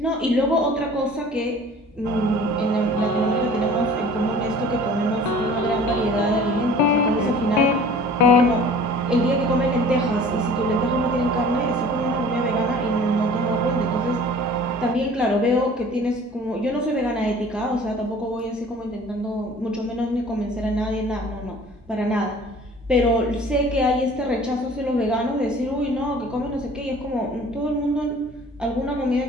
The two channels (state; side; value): normal; both; correlation 0.47